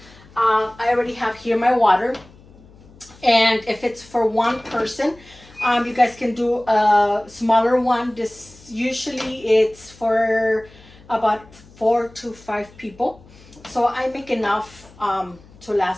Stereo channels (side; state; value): left; noise; hum, 24 dB below the sound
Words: I already have here my water, and if it's for one person, you guys can do a smaller one. This usually it's for about 4 to 5 people, so I make enough to